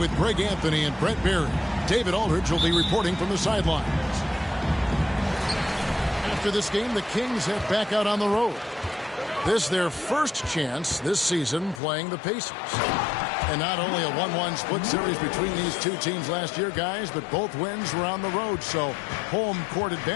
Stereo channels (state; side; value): drops out; right; at 11.8 s